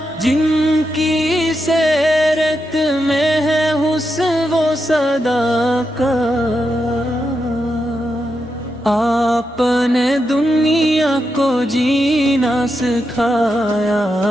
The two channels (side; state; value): both; normal; correlation 0.85